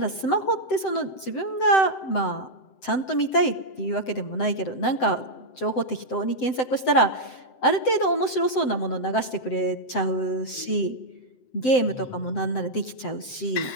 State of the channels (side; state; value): right; late; 7.8 ms